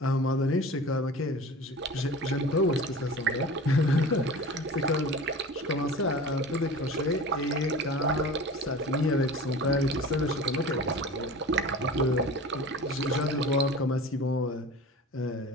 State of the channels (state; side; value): normal; both; correlation 0.37